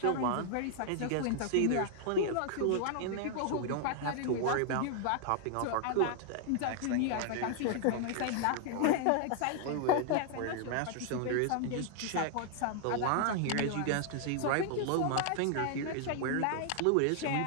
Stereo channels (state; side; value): different; both; correlation 0.00